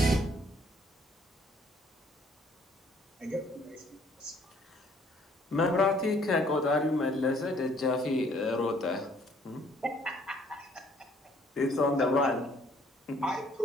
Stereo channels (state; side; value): normal; both; correlation 0.62